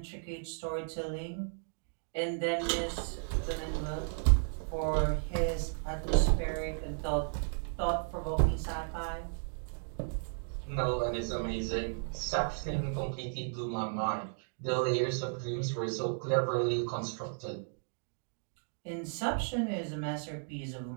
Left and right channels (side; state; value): left; silent; digital silence